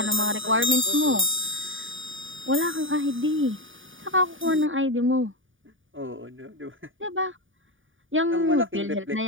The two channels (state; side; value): late; left; 0.57 ms